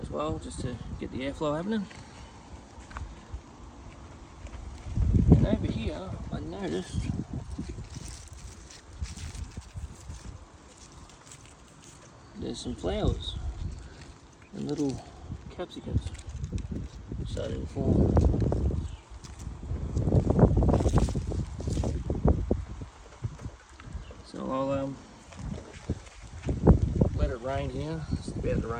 as well, just to get the airflow happening. And over here, I noticed there's some flowers and little capsicums starting to form. So I'll let it rain here. It's about to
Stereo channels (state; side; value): identical; both; correlation 1.00